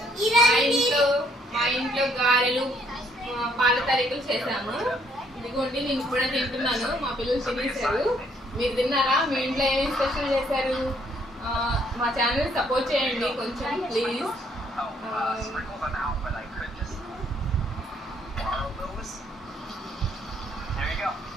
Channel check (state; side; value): normal; both; correlation 0.67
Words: మా ఇంట్లో గారెలు, పాల తారీఖులు చేశాము. ఇదిగోండి నేను కూడా తింటున్నాను. మా పిల్లలు తినేశారు. మీరు తిన్నారా? మీ ఇంట్లో ఏమేమి స్పెషల్ చేశారు? మా ఛానల్ సపోర్ట్ చేయండి కొంచెం ప్లీజ్.